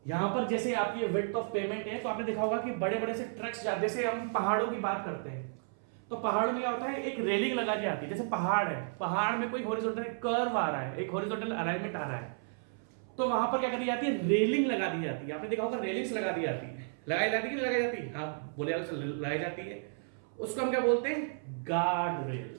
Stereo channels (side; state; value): left; silent; 56 dB below the other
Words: यहां पर जैसे आपकी विड्थ ऑफ पेमेंट है, तो आपने देखा होगा कि बड़े बड़े से ट्रक्स जाते, जैसे हम पहाड़ों की बात करते हैं तो पहाड़ों में क्या होता है, एक रेलिंग लगा के आती है, जैसे पहाड़ है, पहाड़ में कोई हॉरिजॉन्टल कर्व आ रहा है, एक हॉरिजॉन्टल अलाइनमेंट आ रहा है, तो वहां पर क्या करी जाती है, रेलिंग लगा दी जाती है। आपने देखा होगा रेलिंग्स लगा दी जाती है, लगाई जाती है कि लगाई जाती है, हाँ बोले लगाई जाती है, उसको हम क्या बोलते हैं, गार्ड रेल।